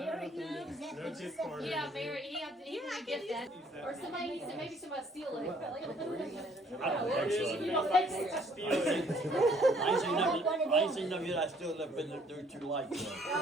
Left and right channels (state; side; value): normal; both; correlation 0.61